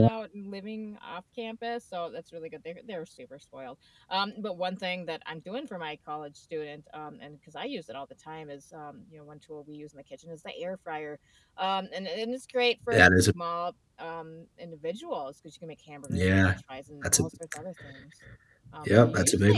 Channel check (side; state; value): both; identical; correlation 1.00